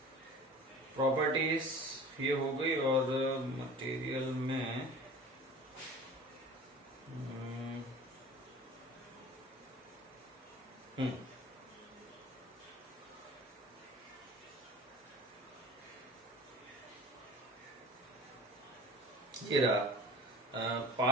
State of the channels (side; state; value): both; normal; correlation 0.39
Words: प्रॉपर्टीज ये हो गई, और मटेरियल में ये रहा